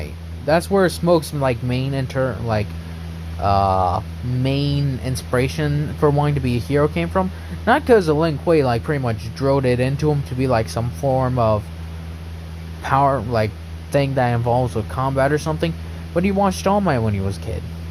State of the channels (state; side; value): identical; both; correlation 1.00